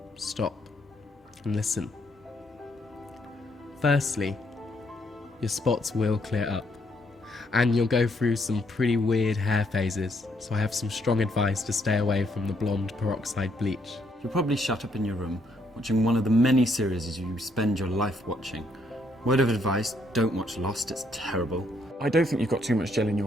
stop and listen. Firstly, your spots will clear up, and you'll go through some pretty weird hair phases, so I have some strong advice to stay away from the blonde peroxide bleach. You'll probably shut up in your room, watching one of the many series you spend your life watching. Word of advice, don't watch Lost, it's terrible. I don't think you've got too much gel in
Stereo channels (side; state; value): both; normal; correlation 0.72